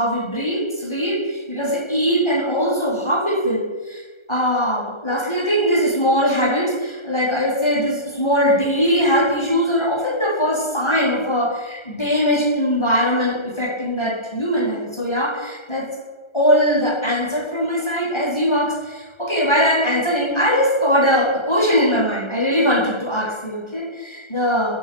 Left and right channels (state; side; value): late; right; 1.3 ms